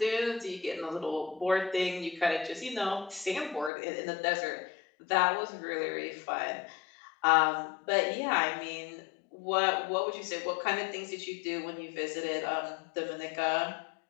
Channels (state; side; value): drops out; right; at 3.7 s